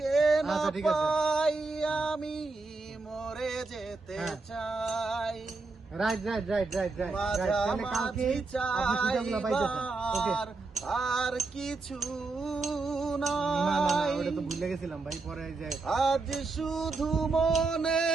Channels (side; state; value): left; quieter; 3.7 dB